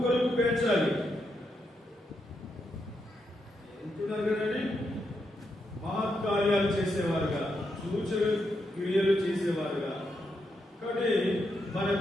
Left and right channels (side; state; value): both; normal; correlation 0.82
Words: కొరకు పెంచాలి. ఎంతున్నారు కదండి, మహత్కార్యాలు చేసేవారుగా, సూచన క్రియలు చేసేవారుగా. కాబట్టి మన